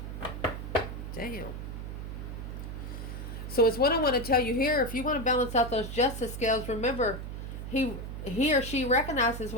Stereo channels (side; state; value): right; noise; hum, 7 dB below the sound